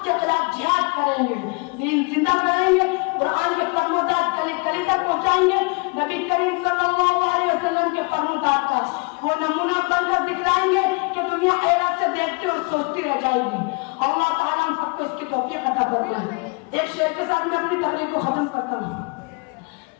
खिलाफ जिहाद करेंगे, दीन जिंदा करेंगे, कुरान के फरमादात गली गली तक पहुंचाएंगे, नबी करीम सल्लल्लाहु अलैहि वसल्लम के फरमादात का वो नमूना बनकर दिखलाएंगे कि दुनिया हैरत से देखती और सोचती रह जाएगी। अल्लाह ताला हम सबको इसकी तौफीक अता फरमाए। एक शेर के साथ मैं अपनी तकरीर को खत्म करता हूँ।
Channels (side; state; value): right; quieter; 31.4 dB